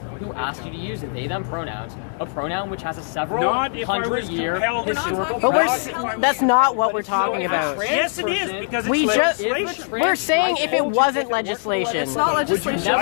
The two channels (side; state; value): right; silent; digital silence